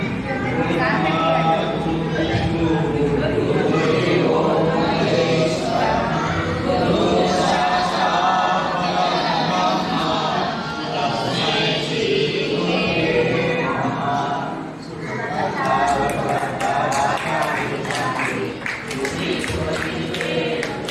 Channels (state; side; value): identical; both; correlation 1.00